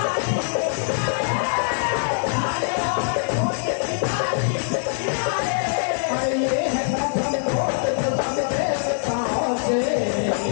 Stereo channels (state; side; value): silent; right; digital silence